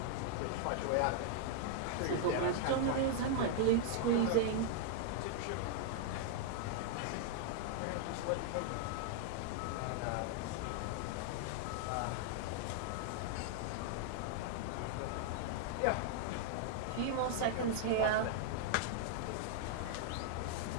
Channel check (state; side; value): different; both; correlation -0.01